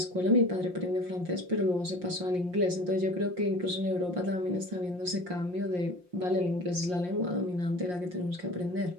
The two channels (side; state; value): left; late; 5.6 ms